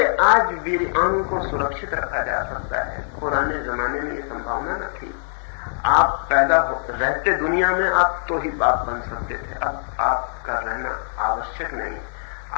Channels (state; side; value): silent; right; 64 dB below the other